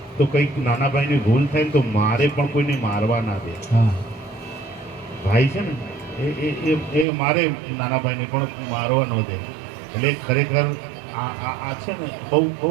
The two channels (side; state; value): left; drops out; at 7.1 s